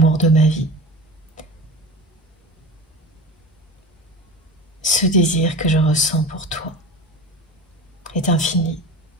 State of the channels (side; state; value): both; normal; correlation 0.33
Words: de ma vie. Ce désir que je ressens pour toi est infini.